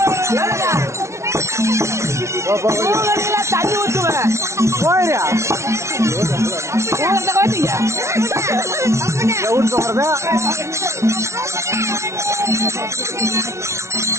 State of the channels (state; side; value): late; left; 0.13 ms